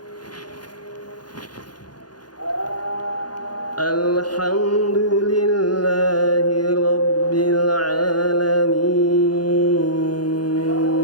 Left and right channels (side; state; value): right; late; 0.70 ms